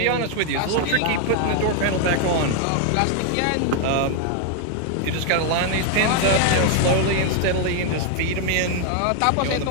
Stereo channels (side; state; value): both; different; correlation 0.00